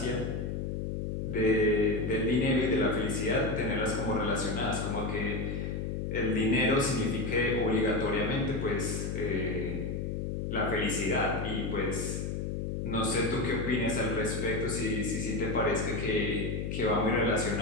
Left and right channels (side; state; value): left; noise; hum, 2 dB below the sound